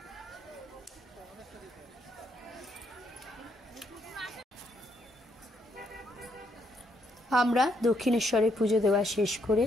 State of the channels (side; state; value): both; normal; correlation 0.74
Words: আমরা দক্ষিণেশ্বরে পুজো দেওয়া শেষ করে